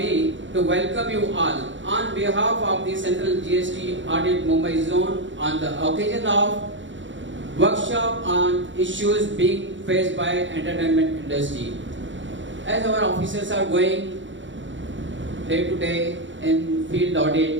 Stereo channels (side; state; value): left; late; 0.55 ms